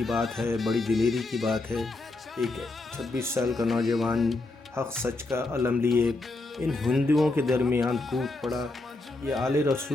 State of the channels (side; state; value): right; quieter; 3.1 dB